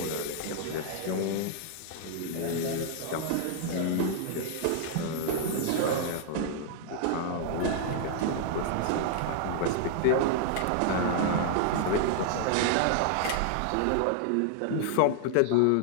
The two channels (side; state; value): both; different; correlation 0.00